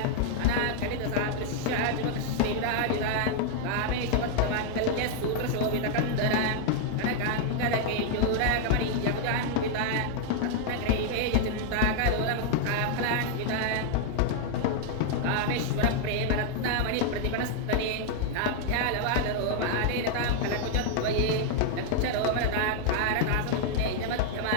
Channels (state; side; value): different; both; correlation 0.00